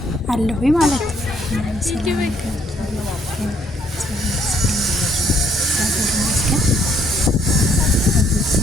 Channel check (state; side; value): normal; both; correlation 0.66